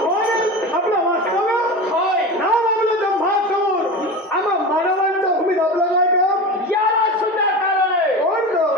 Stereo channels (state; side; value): normal; both; correlation 0.27